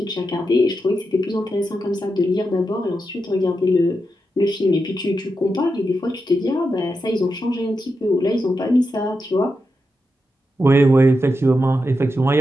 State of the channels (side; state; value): both; normal; correlation 0.87